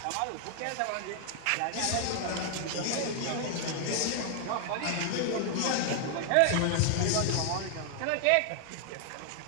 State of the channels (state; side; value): different; both; correlation 0.00